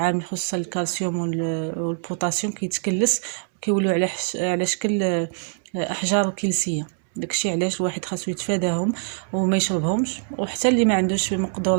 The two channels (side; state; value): left; silent; 63 dB below the other